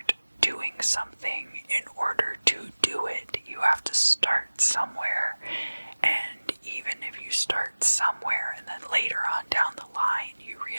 doing something in order to do it. You have to start somewhere, and even if you start somewhere and then later on down the line you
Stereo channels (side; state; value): both; inverted; correlation -1.00